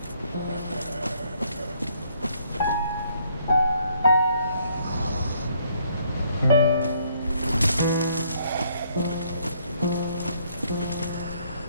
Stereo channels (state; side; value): inverted; both; correlation -0.68